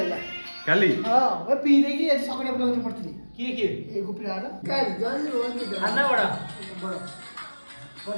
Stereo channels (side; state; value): both; inverted; correlation -1.00